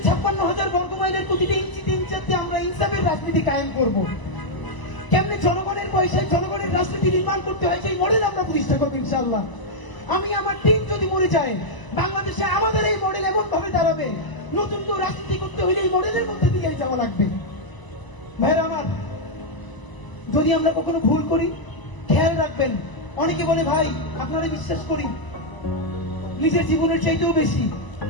56,000 বর্গমাইলের প্রতিটি ইঞ্চিতে ইঞ্চিতে আমরা ইনসাফের রাজনীতি কায়েম করব। কেমনে জনগণের পয়সায় জনগণের রাজনীতি নির্মাণ করতে হয়, সেই মডেল আমরা প্রতিষ্ঠা করবো ইনশাআল্লাহ। আমি আমার টিম যদি মরে যায়, বাংলাদেশে আমাদের এই মডেল এমন ভাবে দাঁড়াবে, নতুন কেউ রাজনীতি করতে হলে এই মডেলের মধ্যে দিয়ে যাওয়া লাগবে। ভাইরা আমার, যদি আমরা কখনো ভুল করি, খেয়াল রাখবেন। অনেকে বলে ভাই আপনারা বিশ্বাস করি নিজের জীবনের চাইতেও বেশি,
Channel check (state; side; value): late; right; 1.0 ms